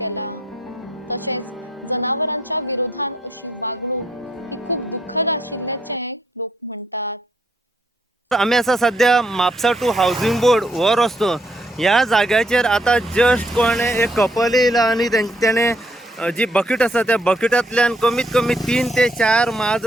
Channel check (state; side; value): normal; both; correlation 0.71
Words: तशेंच जनावरांच्या विरोधान अशी वागणूक ही खूप दुःखद आशिल्ल्याचें लोक म्हणटात। आम्ही असा सध्या म्हापसा टू हाऊसिंग बोर्ड हो रस्तो ह्या जाग्याचेर आता जस्ट कोणे एक कपल येयला आणि त्याने जी बकेट आसा त्या बकेटांतल्यान कमीत कमी 3 ते 4